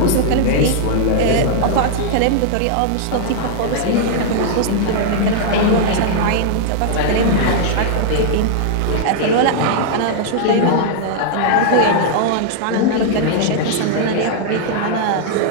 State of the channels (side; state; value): both; different; correlation -0.01